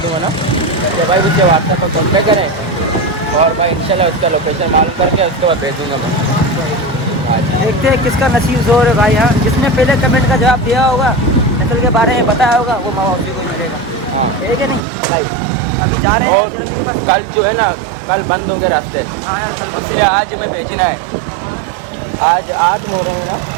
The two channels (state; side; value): drops out; left; at 14.9 s